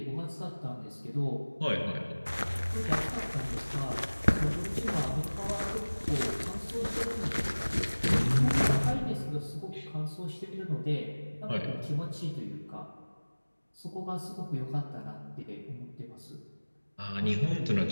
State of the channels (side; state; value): both; inverted; correlation -1.00